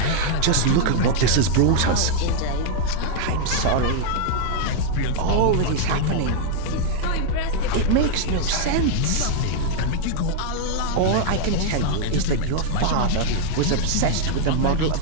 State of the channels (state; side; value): different; both; correlation 0.00